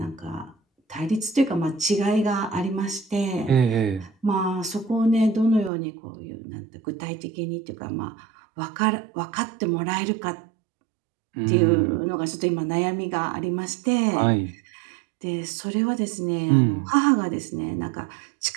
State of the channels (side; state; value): left; drops out; at 5.7 s